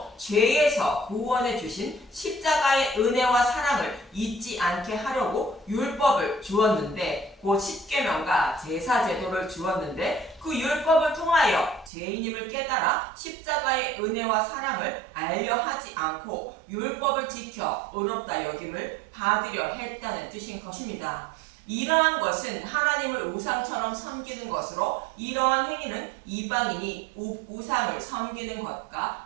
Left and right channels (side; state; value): left; drops out; at 11.9 s